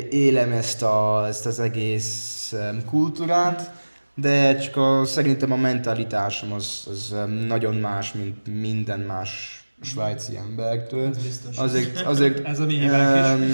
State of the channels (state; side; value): inverted; both; correlation -1.00